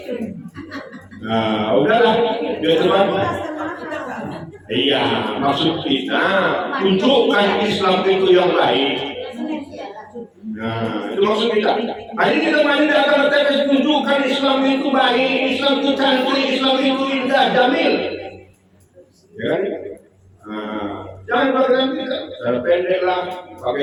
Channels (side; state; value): both; identical; correlation 1.00